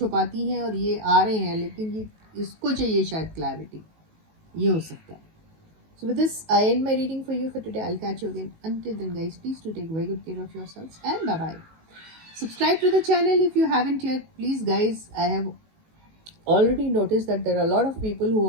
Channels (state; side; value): late; left; 19 ms